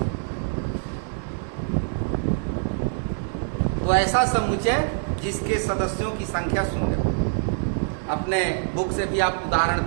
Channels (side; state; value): left; silent; 62 dB below the other